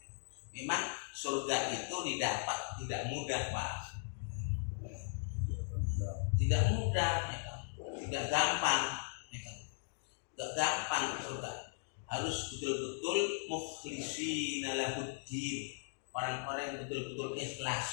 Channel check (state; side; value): silent; right; digital silence